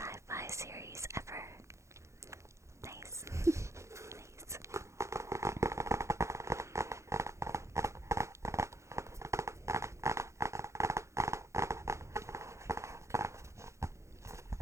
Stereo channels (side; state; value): left; late; 0.14 ms